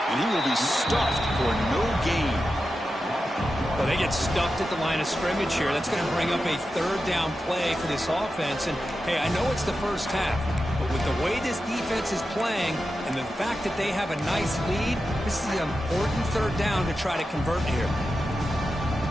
And he will be stuffed for no gain. Well, they get stuffed at the line of scrimmage here. That's going to bring up a third down play for this offense. And, hey, I know it's the first half, but with the way this defense is playing and the fact that they have a nice lead, this is an important third down to try to convert here.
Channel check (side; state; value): both; normal; correlation 0.91